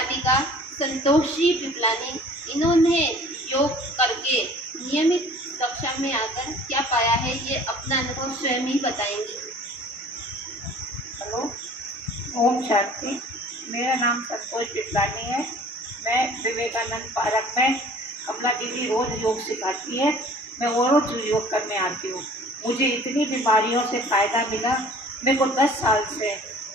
संतोष जी पिपलानी। इन्होंने योग करके नियमित कक्षा में आकर क्या पाया है, ये अपना अनुभव स्वयं ही बताएंगी। हेलो, ओम शांति। मेरा नाम संतोष पिपलानी है। मैं विवेकानंद पार्क में कमला दीदी रोज योग सिखाती है, मैं वो रोज योग करने आती हूँ। मुझे इतनी बीमारियों से फ़ायदा मिला। मेरे को 10 साल से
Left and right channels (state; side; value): normal; both; correlation 0.49